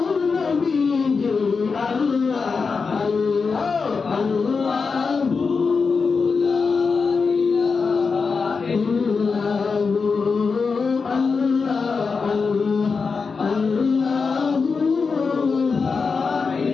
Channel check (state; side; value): quieter; right; 4.9 dB